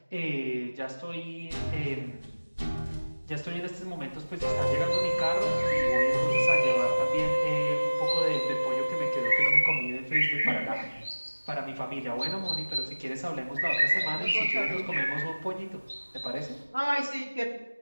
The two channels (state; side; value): inverted; both; correlation -1.00